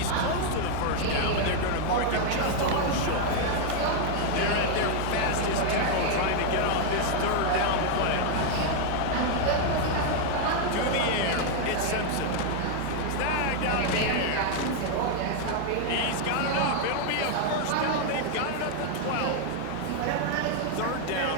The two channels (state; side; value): different; both; correlation 0.00